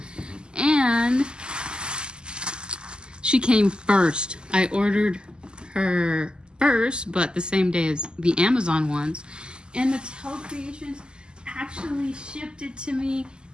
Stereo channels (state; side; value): late; left; 0.048 ms